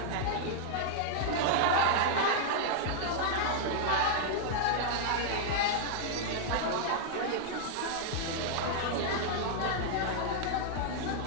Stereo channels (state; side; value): different; both; correlation -0.01